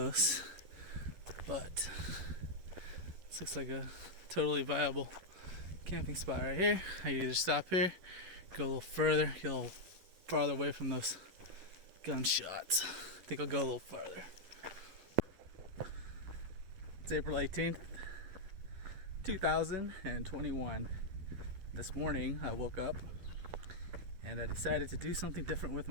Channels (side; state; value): left; late; 11 ms